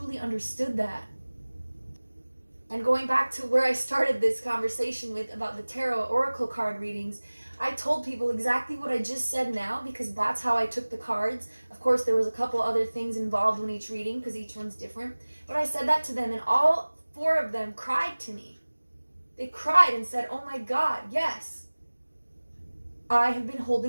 understood that. And going back to where I started this conversation with about the tarot oracle card readings, I told people exactly what I just said now because that's how I took the cards. Of course, there was a couple other things involved in each reading because each one's different. But I said that to them and all 4 of them cried to me. They cried and said, oh my God, yes. I have been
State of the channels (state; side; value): inverted; both; correlation -1.00